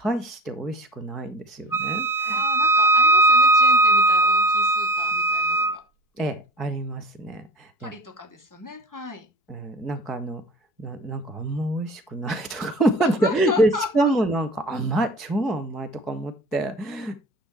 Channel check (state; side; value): late; right; 4.6 ms